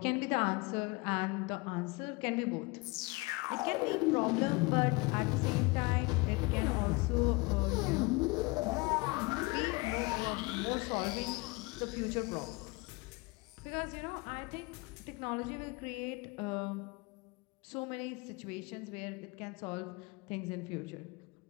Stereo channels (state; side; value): quieter; right; 25.6 dB